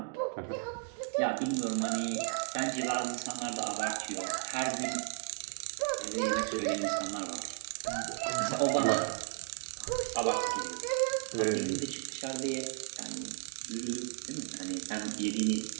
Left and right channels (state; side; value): silent; left; 55 dB below the other